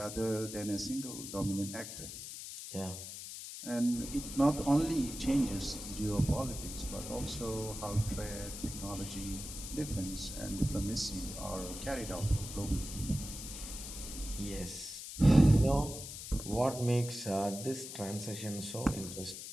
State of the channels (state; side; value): noise; left; hiss, 9 dB below the sound